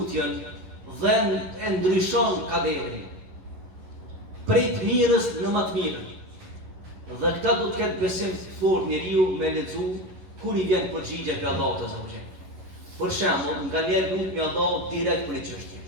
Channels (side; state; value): left; late; 11 ms